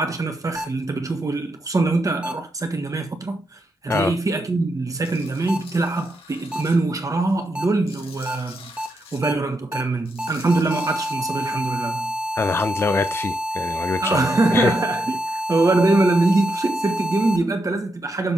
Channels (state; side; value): normal; both; correlation 0.82